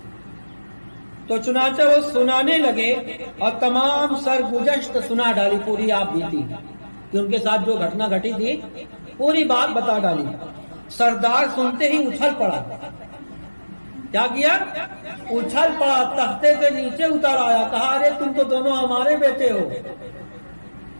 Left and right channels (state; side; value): inverted; both; correlation -1.00